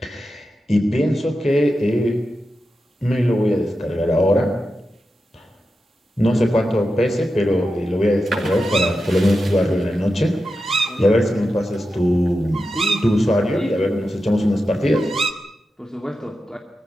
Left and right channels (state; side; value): normal; both; correlation 0.90